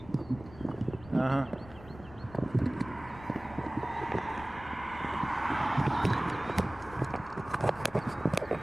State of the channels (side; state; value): left; noise; rumble, 18 dB below the sound